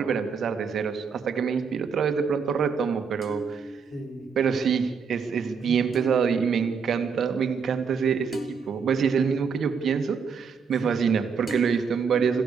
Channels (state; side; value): quieter; left; 5.9 dB